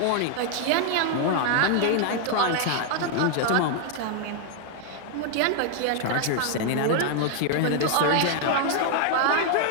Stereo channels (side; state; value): both; different; correlation 0.00